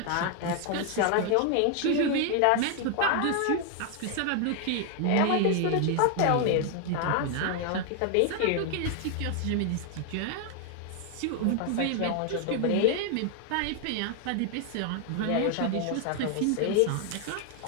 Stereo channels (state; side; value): different; both; correlation 0.00